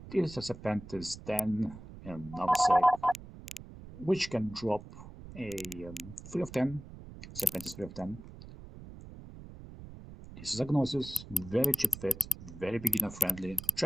is a Serpentis Den and nullsec, which can drop a 3 of 10, Serpentis 3 of 10. This is a Gnosis, very cheap fit, very beginner friendly.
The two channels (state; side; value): noise; right; rumble, 15 dB below the sound